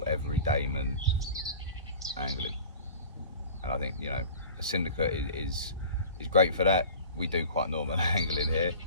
everydayman angling. And I think, you know, a Syndicate is great for that. We do quite normal angling here,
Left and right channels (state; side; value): inverted; both; correlation -0.41